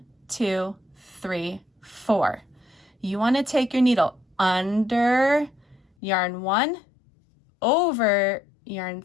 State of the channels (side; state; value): right; drops out; at 5.9 s